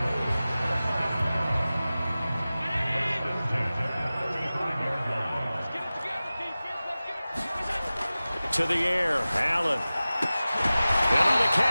To the air, Allen. And on the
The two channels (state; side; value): inverted; both; correlation -0.97